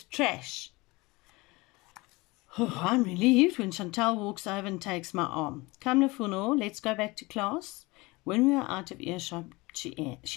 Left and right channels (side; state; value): right; quieter; 23.3 dB